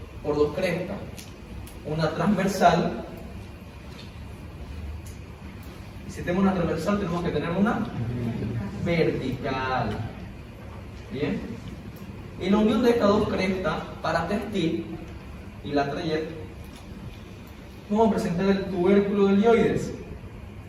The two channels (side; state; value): both; identical; correlation 1.00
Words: por dos crestas, una transversal. Si tenemos una transversal, tenemos que tener una vertical. Bien. Y la unión de estas dos crestas, paratextil y la trayectoria, vamos a presentar el tubérculo del yoides.